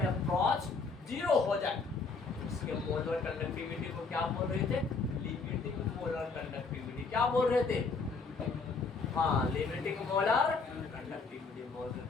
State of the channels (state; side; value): quieter; right; 4.4 dB